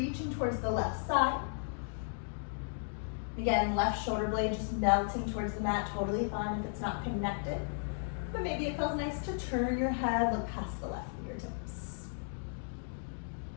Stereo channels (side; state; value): right; silent; digital silence